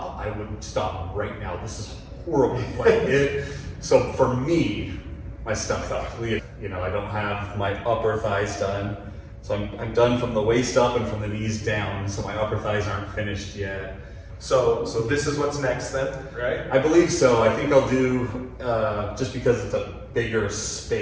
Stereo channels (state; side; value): identical; both; correlation 1.00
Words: I would stop right now. This is horrible. So for me, my stomach, you know, I don't have my upper thighs done. So I'm done from the waist up and from the knees down. So my upper thighs aren't finished yet. So this is what's next then, right? I believe so. I think I'll do, just because it's a bigger